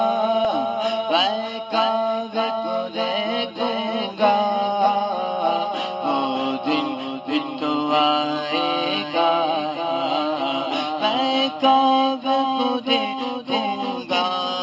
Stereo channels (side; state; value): both; identical; correlation 1.00